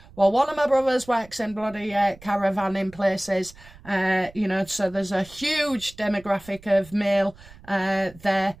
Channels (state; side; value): noise; right; rumble, 22 dB below the sound